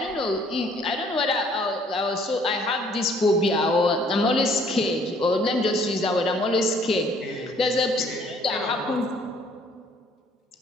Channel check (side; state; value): both; normal; correlation 0.61